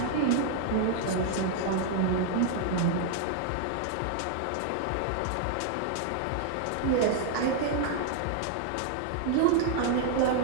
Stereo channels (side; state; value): both; different; correlation 0.00